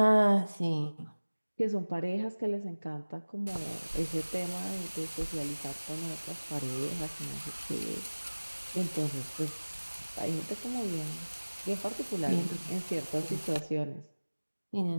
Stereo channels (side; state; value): both; inverted; correlation -1.00